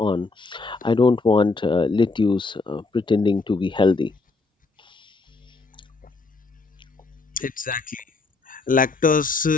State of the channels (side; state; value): right; quieter; 3.8 dB